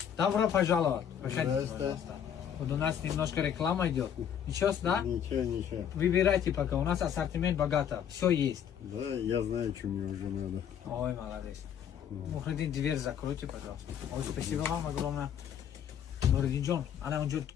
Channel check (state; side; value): quieter; right; 8.8 dB